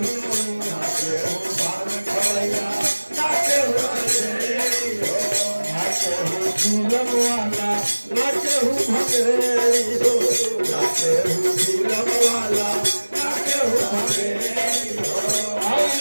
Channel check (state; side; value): inverted; both; correlation -1.00